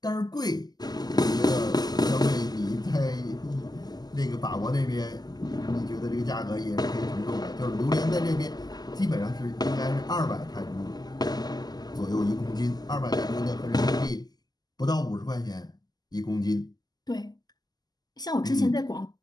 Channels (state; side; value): late; right; 0.20 ms